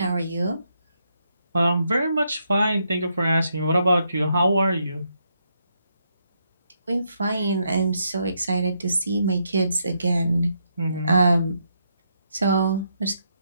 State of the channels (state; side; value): inverted; both; correlation -0.78